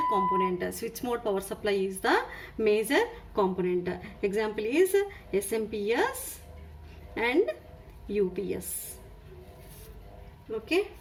component. Switch mode power supply is the major component. Example is SMPS and UPS. Okay,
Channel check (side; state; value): both; identical; correlation 1.00